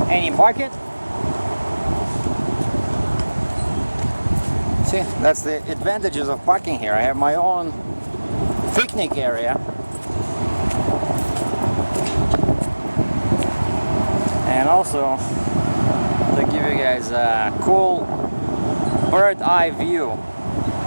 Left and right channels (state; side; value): inverted; both; correlation -1.00